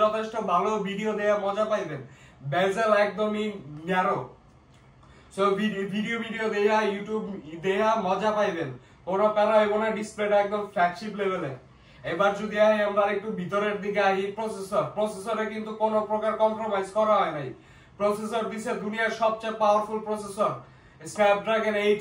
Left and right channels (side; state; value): both; identical; correlation 1.00